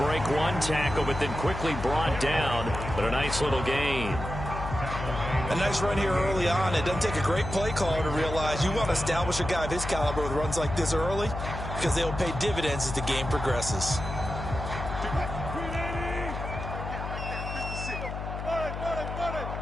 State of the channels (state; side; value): noise; left; hum, 6 dB below the sound